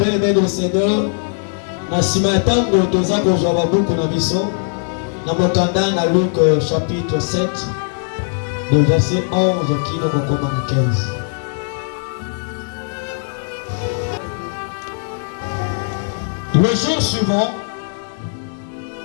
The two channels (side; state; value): right; silent; 67 dB below the other